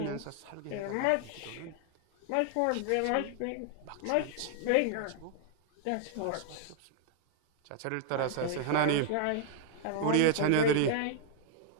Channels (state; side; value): different; both; correlation 0.00